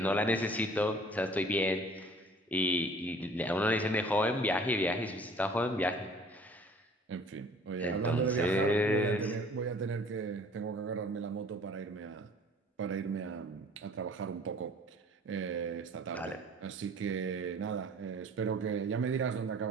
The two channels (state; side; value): normal; both; correlation 0.51